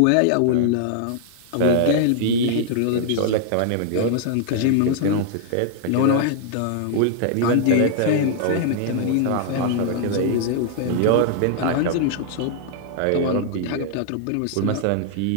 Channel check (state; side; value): different; both; correlation -0.01